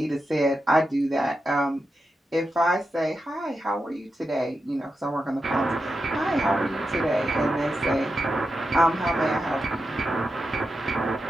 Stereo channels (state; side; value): normal; both; correlation 0.88